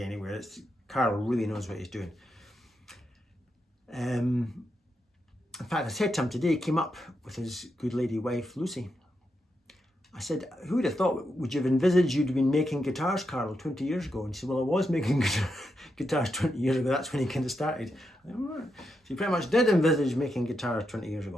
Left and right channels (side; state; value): both; normal; correlation 0.84